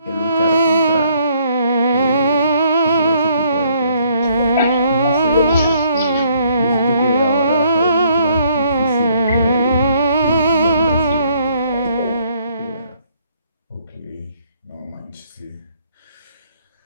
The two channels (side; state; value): both; inverted; correlation -0.66